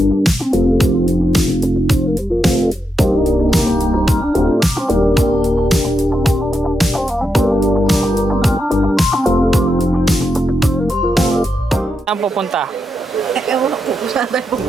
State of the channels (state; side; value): normal; both; correlation 0.84